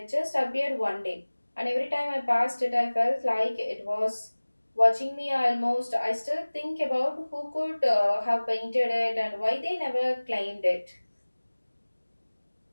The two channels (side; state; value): both; inverted; correlation -1.00